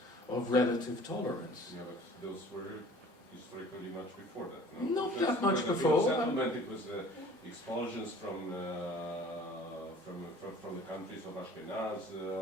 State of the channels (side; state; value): both; normal; correlation 0.48